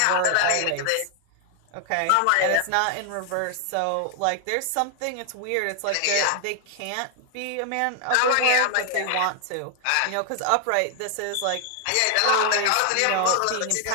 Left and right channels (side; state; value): both; different; correlation 0.00